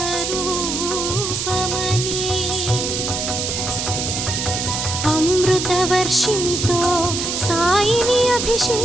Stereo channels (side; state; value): right; noise; hiss, 2 dB below the sound